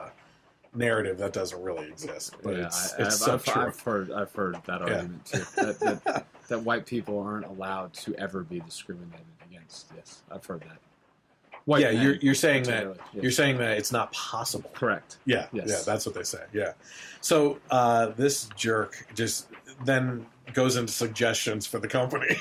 narrative that doesn't really exist. But it's so true. I've heard that argument too. That white people aren't allowed to ever be discriminated against. Yes, I've heard that. You're saying that you're saying that it's not possible. Correct. Yeah, that's what they say. Yeah. So this jerk just then goes into suggestions for the company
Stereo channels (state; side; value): identical; both; correlation 1.00